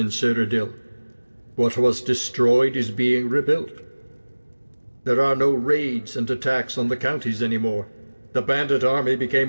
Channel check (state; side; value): inverted; both; correlation -1.00